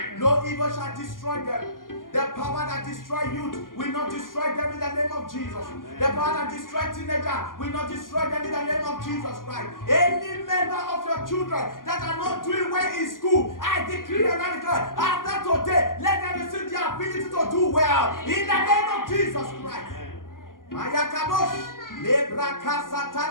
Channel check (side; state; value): right; late; 0.90 ms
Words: No evil shall destroy them. The power that destroys youth will not destroy them in the name of Jesus. The power that destroys teenagers will not destroy them in the name of Jesus Christ. Any member of your children that are not doing well in school, I decree and I declare, after today, let them receive the ability to do well in the name of Jesus Christ. Mayakabosh. Every